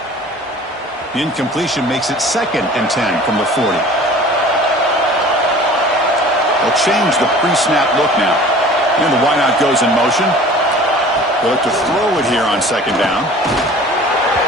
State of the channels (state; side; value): normal; both; correlation 0.45